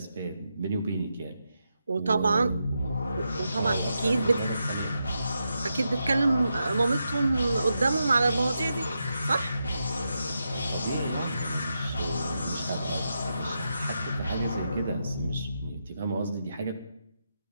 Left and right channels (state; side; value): inverted; both; correlation -0.86